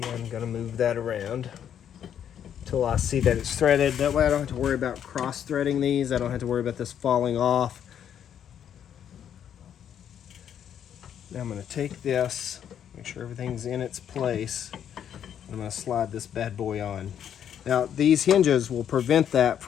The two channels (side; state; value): right; quieter; 9.3 dB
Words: going to move that around until I see that it's threaded. That way I don't have to worry about cross threading these. I don't have to worry about this falling off. Now I'm going to take this, make sure everything's in its place. I'm going to slide this bad boy on. Now these hinges will prevent that